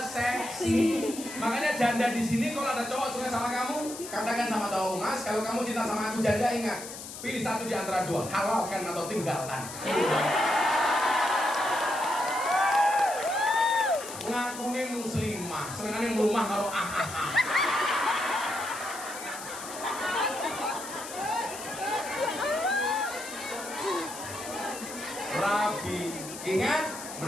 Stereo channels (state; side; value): noise; left; hiss, 11 dB below the sound